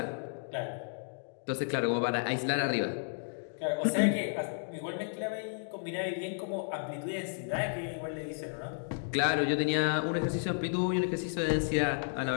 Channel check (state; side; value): silent; right; digital silence